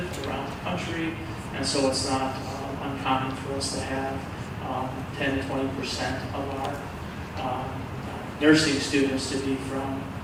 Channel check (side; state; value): both; identical; correlation 1.00